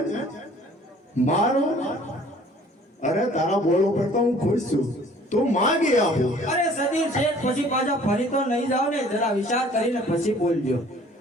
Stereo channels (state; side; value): normal; both; correlation 0.53